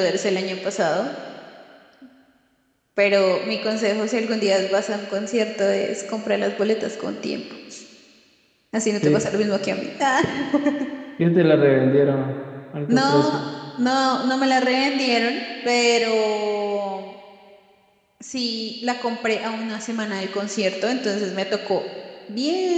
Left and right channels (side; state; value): both; identical; correlation 1.00